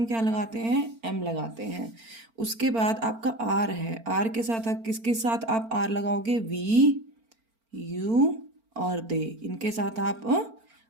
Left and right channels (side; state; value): left; late; 4.4 ms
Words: क्या लगाते हैं? एम लगाते हैं। उसके बाद आपका आर है, आर के साथ आप किसके साथ आप आर लगाओगे? वी, यू और दे, इनके साथ आप